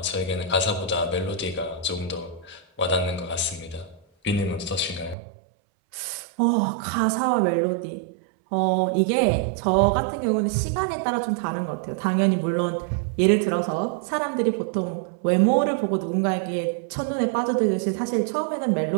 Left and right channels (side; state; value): left; drops out; at 5.2 s